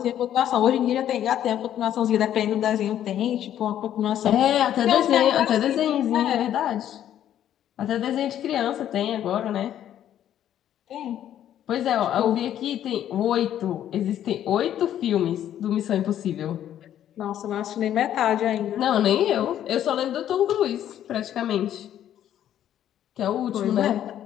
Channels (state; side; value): quieter; right; 11.0 dB